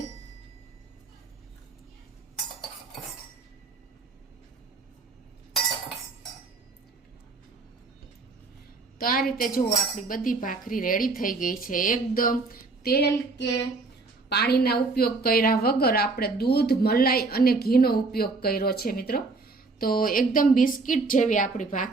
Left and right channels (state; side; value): quieter; left; 3.8 dB